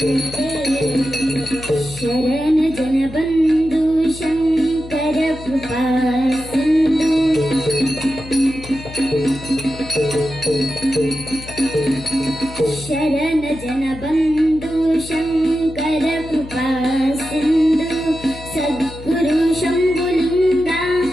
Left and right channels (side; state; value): left; noise; hum, 15 dB below the sound